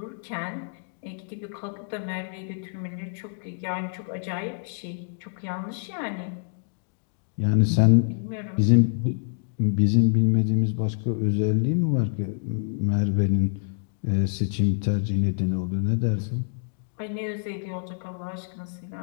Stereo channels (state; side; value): silent; right; digital silence